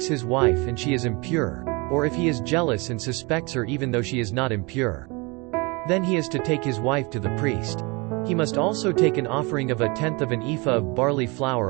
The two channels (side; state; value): left; quieter; 27.9 dB